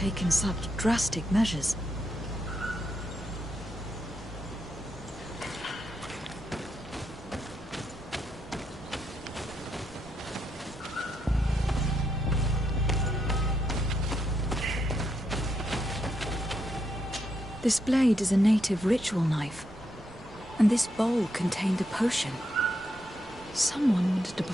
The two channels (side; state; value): right; noise; rumble, 21 dB below the sound